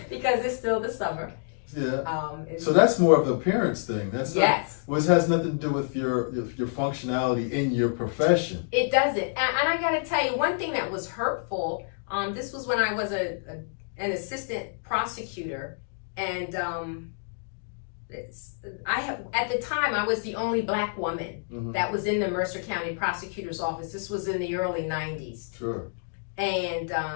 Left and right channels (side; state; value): right; silent; digital silence